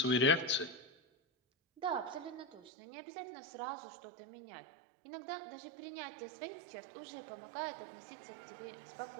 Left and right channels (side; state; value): left; drops out; at 2.7 s